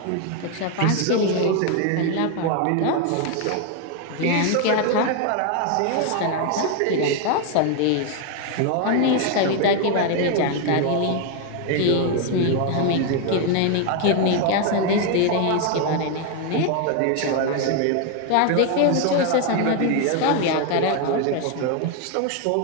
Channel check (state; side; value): different; both; correlation 0.01